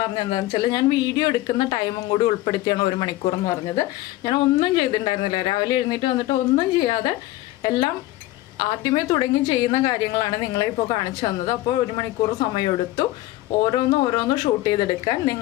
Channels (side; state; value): right; quieter; 16.9 dB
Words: പറഞ്ഞത് എന്താണെന്ന് വെച്ചാൽ ഞാൻ വീഡിയോ എടുക്കുന്ന ടൈമും കൂടി ഉൾപ്പെടുത്തിയാണ് 1 മണിക്കൂർ എന്ന് പറഞ്ഞത്. ഞാൻ ഒന്നും ചെയ്തിട്ടുണ്ടായിരുന്നില്ല. രാവിലെ എഴുന്നേറ്റ് വന്നിട്ട് ഒന്നും ചെയ്യാതെ എല്ലാം ആദ്യമേ തുടങ്ങി ചെയ്യുന്ന കാര്യങ്ങളാണ് നിങ്ങളെ ഇപ്പോൾ കാണിച്ചു തന്നത്. അപ്പോൾ 1 മണിക്കൂർ സമയമെടുത്തു ഓരോന്ന് ഷൂട്ട് ചെയ്തെടുക്കാൻ.